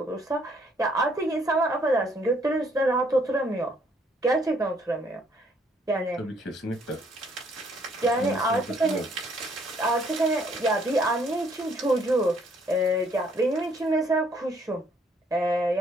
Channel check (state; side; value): normal; both; correlation 0.66